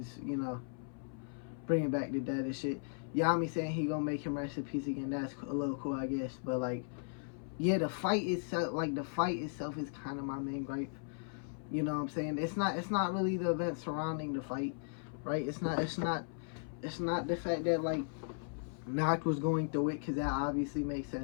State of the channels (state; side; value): silent; right; 53 dB below the other